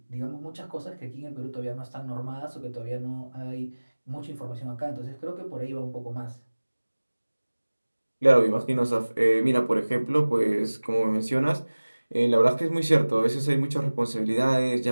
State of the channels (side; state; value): both; inverted; correlation -1.00